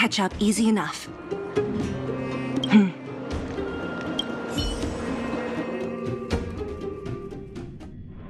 up easy enough.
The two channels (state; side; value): identical; both; correlation 1.00